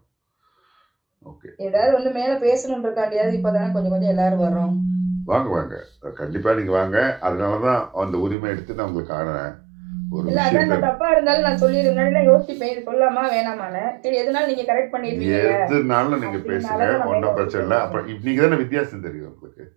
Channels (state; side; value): drops out; left; at 8.3 s